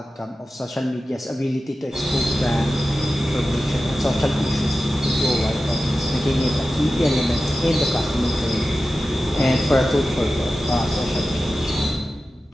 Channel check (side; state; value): both; normal; correlation 0.93